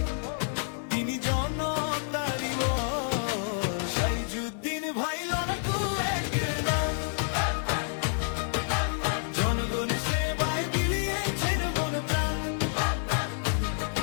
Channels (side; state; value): right; silent; 57 dB below the other